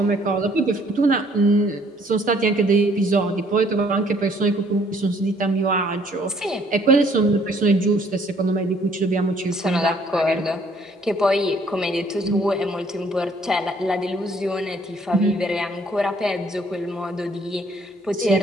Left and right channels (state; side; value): normal; both; correlation 0.62